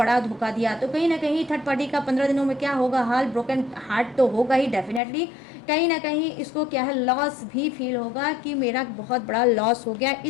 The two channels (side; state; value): right; drops out; at 5.0 s